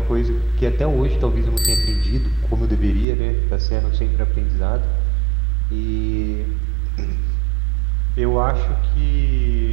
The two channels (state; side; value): drops out; left; at 3.1 s